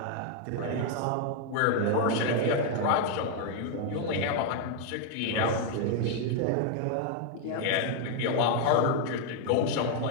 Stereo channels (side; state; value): both; different; correlation 0.00